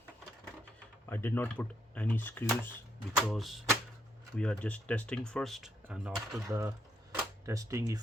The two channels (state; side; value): normal; both; correlation 0.77